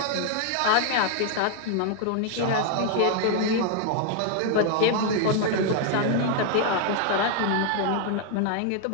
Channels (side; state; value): both; different; correlation 0.00